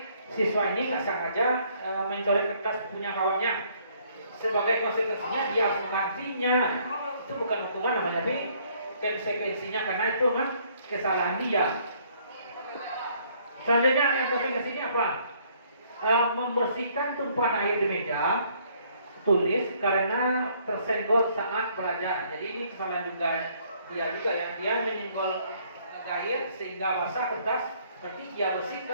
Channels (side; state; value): both; inverted; correlation -0.64